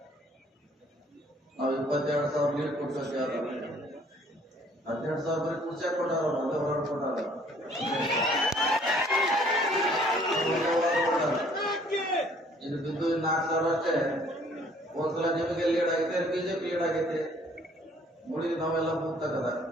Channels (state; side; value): normal; both; correlation 0.59